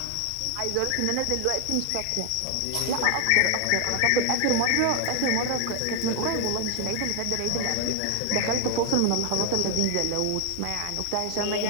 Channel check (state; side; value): different; both; correlation 0.00